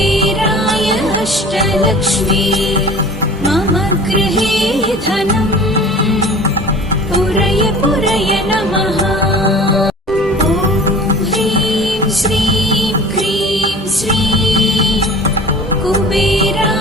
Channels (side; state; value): both; normal; correlation 0.42